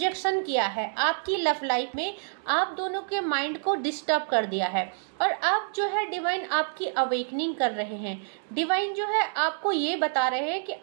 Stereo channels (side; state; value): left; silent; digital silence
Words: किया है आपकी लव लाइफ में, आप दोनों के माइंड को डिस्टर्ब कर दिया है। और अब जो है डिवाइन आपकी अवेकनिंग कर रहे हैं। डिवाइन जो है आपको ये बता रहे हैं कि